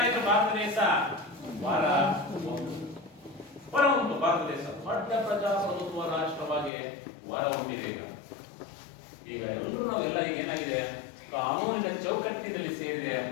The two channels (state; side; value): drops out; right; at 6.7 s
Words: ಭಾರತ ದೇಶ ಹೊರಹೊಮ್ಮಿತು. ಭಾರತ ದೇಶ ದೊಡ್ಡ ಪ್ರಜಾಪ್ರಭುತ್ವ ರಾಷ್ಟ್ರವಾಗಿ ಹೊರಹೊಮ್ಮಿದೆ. ಈಗ ಎಲ್ಲರೂ ನಾವೆಲ್ಲ ಈಗ ಏನಾಗಿದೆ? ಕಾನೂನಿನ ಚೌಕಟ್ಟಿನಲ್ಲಿ ಸೇರಿದೆ.